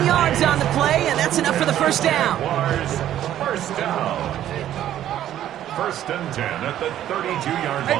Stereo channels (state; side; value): quieter; left; 11.8 dB